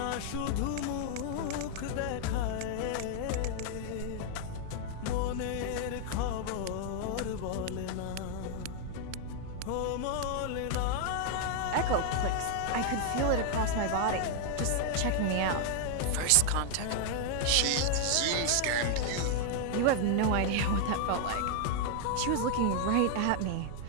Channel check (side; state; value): both; different; correlation 0.00